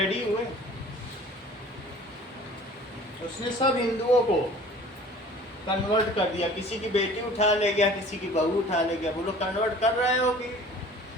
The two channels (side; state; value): both; normal; correlation 0.47